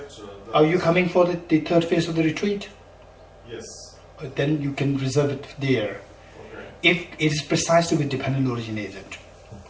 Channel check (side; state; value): both; identical; correlation 1.00